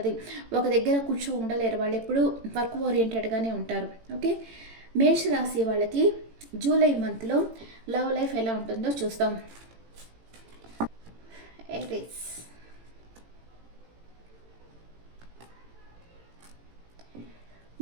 ఒక దగ్గర కూర్చో ఉండలేరు, వాళ్ళు ఎప్పుడూ వర్క్ ఓరియంటెడ్గానే ఉంటారు. ఓకే, మేషరాశి వాళ్ళకి జూలై మంత్లో లవ్ లైఫ్ ఎలా ఉంటుందో చూస్తాం. ఏరీస్,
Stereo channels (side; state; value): left; late; 18 ms